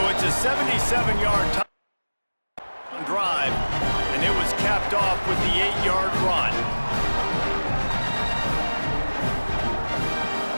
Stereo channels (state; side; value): inverted; both; correlation -1.00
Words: it's a 77-yard touchdown drive, and it was capped off with the 8-yard run.